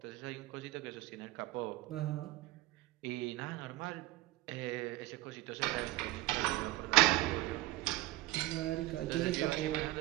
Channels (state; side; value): quieter; left; 17.8 dB